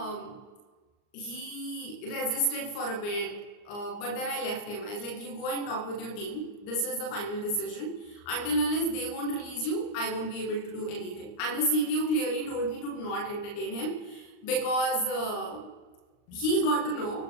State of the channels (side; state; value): right; late; 39 ms